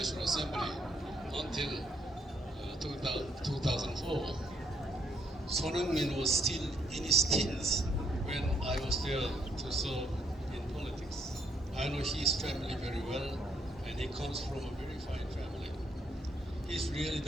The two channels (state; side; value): normal; both; correlation 0.71